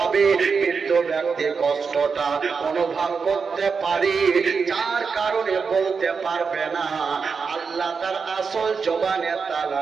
মৃত্যু ব্যক্তি কষ্টটা অনুভব করতে পারে, যার কারণে বলতে পারবে না। আল্লাহ তার আসল জবানে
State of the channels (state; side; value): quieter; left; 5.4 dB